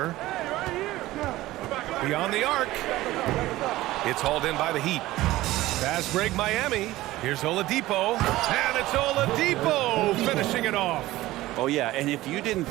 Beyond the arc. It's hauled in by the Heat. Fast break Miami. Here's Oladipo. And it's Oladipo finishing it off. Oh, yeah, and if you didn't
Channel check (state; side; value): quieter; left; 17.0 dB